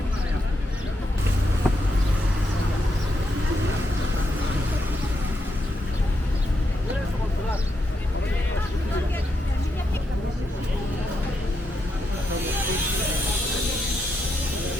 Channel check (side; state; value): both; normal; correlation 0.82